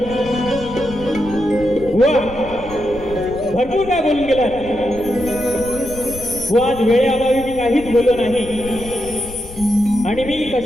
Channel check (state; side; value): noise; left; rumble, 14 dB below the sound